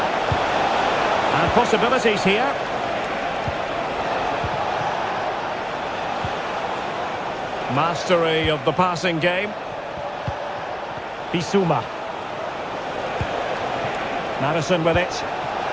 Possibilities here. Mastery of the passing game. Bissouma. Maddison with it.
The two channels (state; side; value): identical; both; correlation 1.00